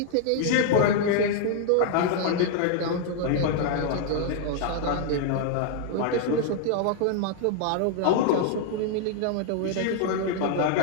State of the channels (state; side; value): different; both; correlation 0.00